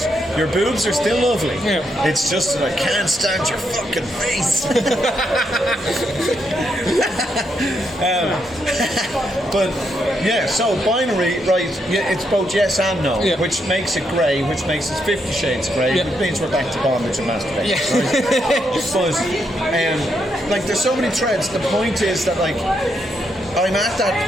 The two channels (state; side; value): normal; both; correlation 0.79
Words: your boobs are still lovely. It's just that I can't stand your fucking face. But so binary, right? It's both yes and no, which makes it grey, which makes it 50 Shades of Grey, which means we're back to bondage and masturbation. But like, there's so many threads. The point is that, like, I'm at that